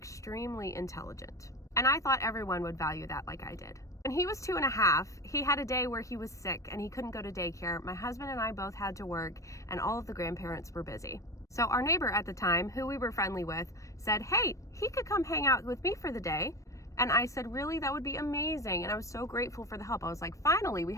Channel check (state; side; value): late; right; 0.15 ms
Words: intelligent, and I thought everyone would value that like I did. When he was 2.5, he had a day where he was sick and he couldn't go to daycare. My husband and I both had to work, and all of the grandparents were busy. So our neighbor at the time, who we were friendly with, said, hey, he could come hang out with me for the day. And I said, really, that would be amazing. And I was so grateful for the help. I was like, finally, we